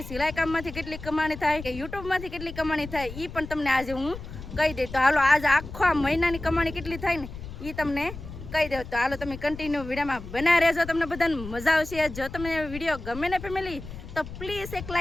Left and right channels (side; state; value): left; noise; rumble, 12 dB below the sound